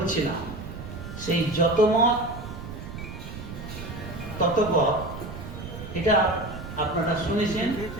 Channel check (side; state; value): right; noise; rumble, 10 dB below the sound